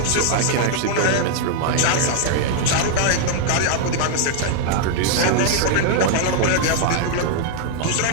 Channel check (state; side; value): different; both; correlation 0.00